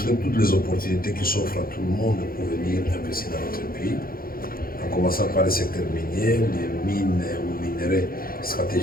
toutes les opportunités qui s'offrent à tout le monde pour venir investir dans notre pays, en commençant par le secteur minier, les mines ou minerais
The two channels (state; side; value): late; right; 0.42 ms